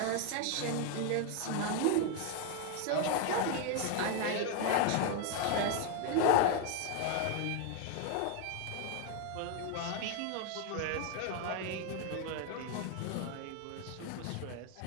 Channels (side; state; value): both; different; correlation 0.01